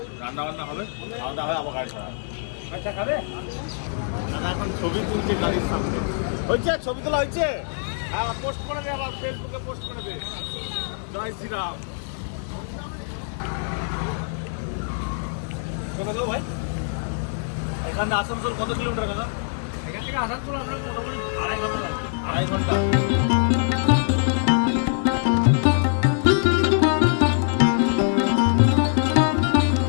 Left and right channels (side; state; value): right; silent; 55 dB below the other